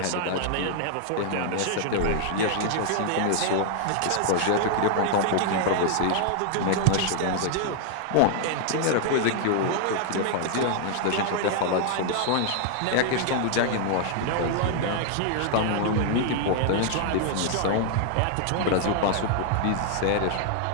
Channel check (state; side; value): different; both; correlation 0.00